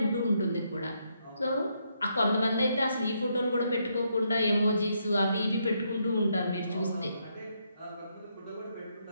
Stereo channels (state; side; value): inverted; both; correlation -0.77